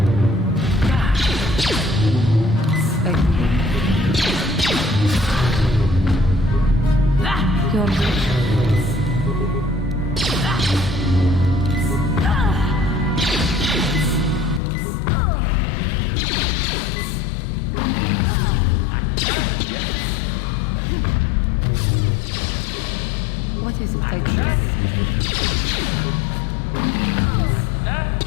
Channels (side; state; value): right; drops out; at 14.6 s